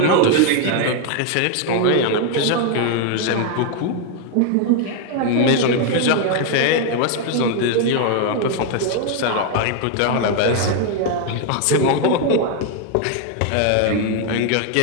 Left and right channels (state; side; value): different; both; correlation 0.01